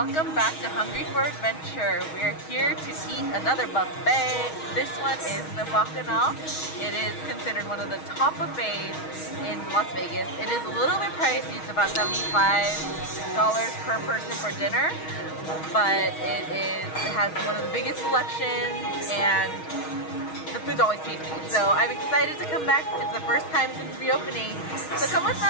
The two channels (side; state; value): right; late; 6.3 ms